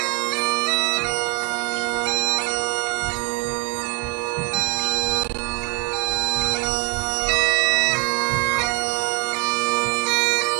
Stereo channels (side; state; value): left; quieter; 27.6 dB